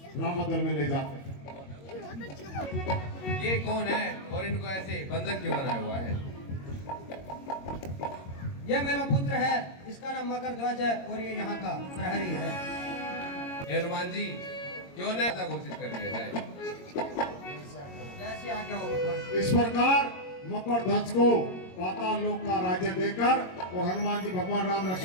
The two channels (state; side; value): late; right; 22 ms